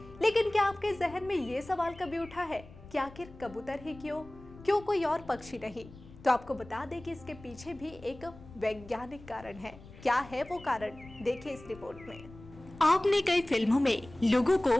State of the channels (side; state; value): left; noise; rumble, 19 dB below the sound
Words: लेकिन क्या आपके जहन में ये सवाल कभी उठा है कि आखिर कबूतर ही क्यों कोई और पक्षी नहीं? तो आपको बता दें कि इसके पीछे भी एक वैज्ञानिक कारण है। क्या है वो कारण, देखिए इस रिपोर्ट में। आपने कई फिल्मों में लोगों